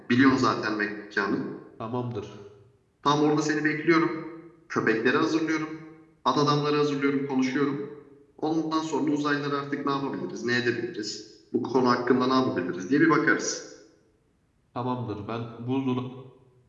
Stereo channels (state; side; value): identical; both; correlation 1.00